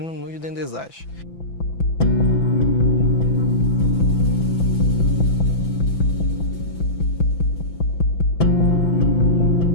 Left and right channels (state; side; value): late; right; 5.9 ms